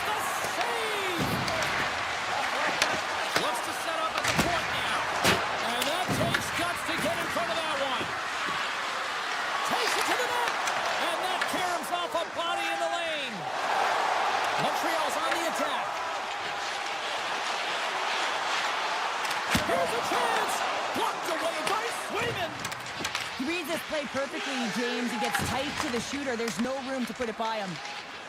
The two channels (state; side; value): identical; both; correlation 1.00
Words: the save! Looks to set up at the point now. And that takes guts to get in front of that one. Takes it to the net. And that caroms off a body in the lane. Montreal's on the attack. Here's a chance. Blocked away by Swayman. He reads this play perfectly, James. He gets tight to the shooter. There's no room to put it by him.